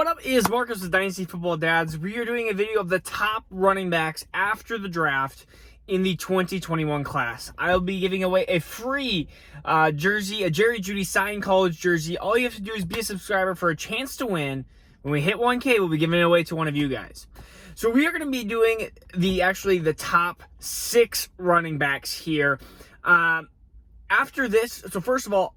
up is Marcus with Dynasty Football Dads. We are doing a video of the top running backs after the draft in the 2021 class. I'll be giving away a free jersey, a Jerry Jeudy signed college jersey. All you have to do is be a subscriber for a chance to win. When we hit 1K, we'll be giving it away to one of you guys. So we are going to be doing the top 6 running backs here. After this, so first of all,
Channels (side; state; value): both; identical; correlation 1.00